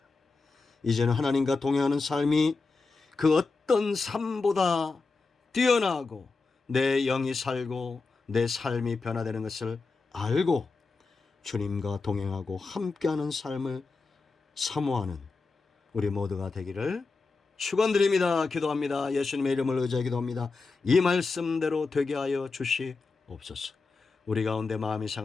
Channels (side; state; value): right; quieter; 4.1 dB